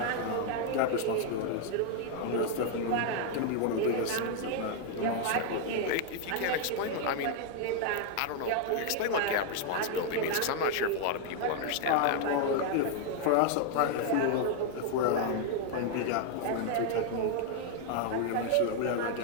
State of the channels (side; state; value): both; different; correlation 0.00